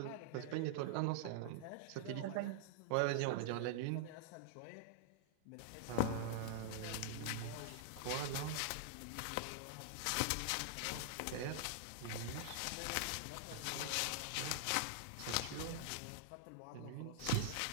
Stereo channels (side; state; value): both; different; correlation -0.01